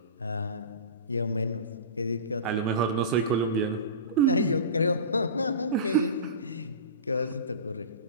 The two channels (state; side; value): inverted; both; correlation -0.31